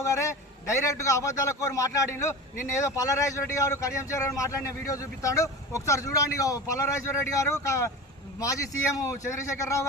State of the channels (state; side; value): normal; both; correlation 0.30